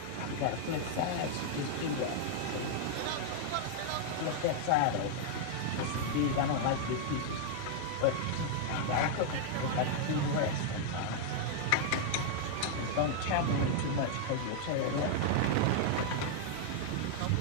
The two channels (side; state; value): both; different; correlation -0.01